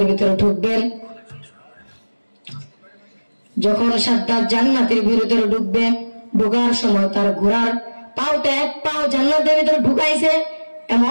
ভিতরে ঢুকবেন, যখন সাদ্দাত জান্নাতের ভিতরে ঢুকবে, ঢোকার সময় তার ঘোড়ার পাওটা এক পাও জান্নাতের ভিতরে ঢুকাইছে।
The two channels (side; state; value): both; inverted; correlation -1.00